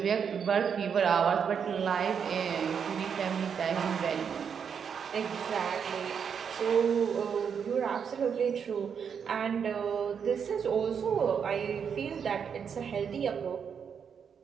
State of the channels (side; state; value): left; quieter; 7.1 dB